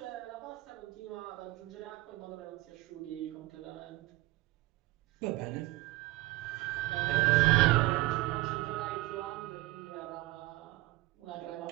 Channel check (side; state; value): left; quieter; 19.4 dB